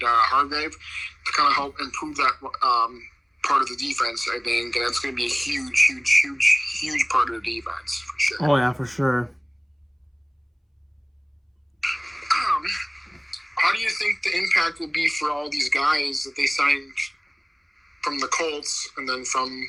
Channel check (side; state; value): both; identical; correlation 1.00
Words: Hargrave to kind of help improve that part of the defense, I think, and it's going to be a huge part of the defense for sure. Oh yeah, for sure. How do you think the impact will be for all these guys that they signed from the Colts and then from,